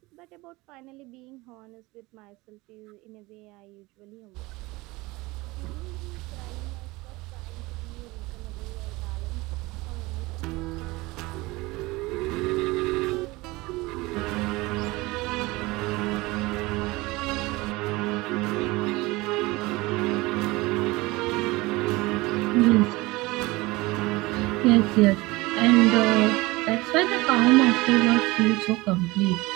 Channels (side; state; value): left; quieter; 21.9 dB